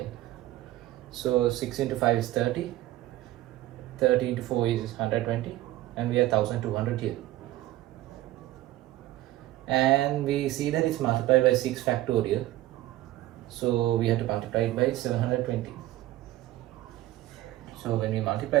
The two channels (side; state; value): left; quieter; 15.9 dB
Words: So 6 into 5 is 30, 30 into 4 is 120, and we have 1200 here. And we see that it's multiplied by 6 factorial, so we have to multiply it by 720. So when we